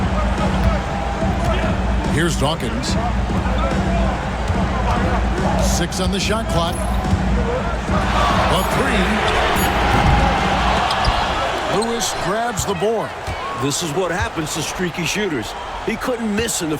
Here's Dawkins. 6 on the shot clock. A 3. Lewis grabs the board. This is what happens to streaky shooters. He couldn't miss in the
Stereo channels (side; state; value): both; identical; correlation 1.00